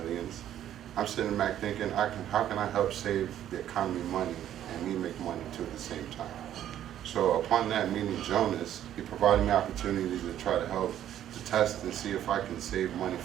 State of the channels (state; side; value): quieter; left; 11.3 dB